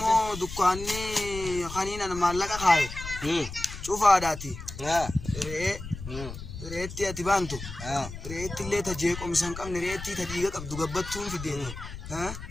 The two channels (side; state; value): left; noise; rumble, 10 dB below the sound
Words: dukkaanni kaniinan maallaqa kaaye cufaadhaati reetti ati baantu reetti illee ta jeeqomsan qabne reetti ta dhiiga qabdu gabbattuun fideeti